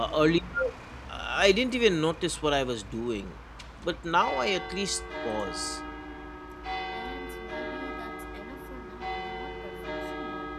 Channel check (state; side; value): identical; both; correlation 1.00